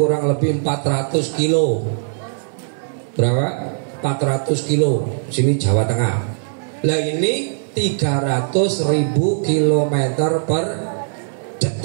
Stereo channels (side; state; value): left; silent; digital silence